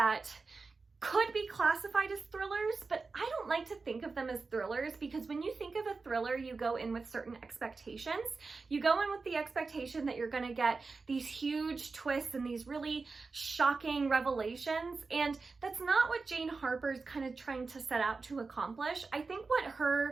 could be classified as thrillers, but I don't like to think of them as thrillers, because when you think of a thriller, you go in with certain expectations. You go in with the expectation that you're gonna get these huge twists and these really shocking revelations, and that's not what Jane Harper's kind of trying to set out to accomplish. I think what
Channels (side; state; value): left; quieter; 4.2 dB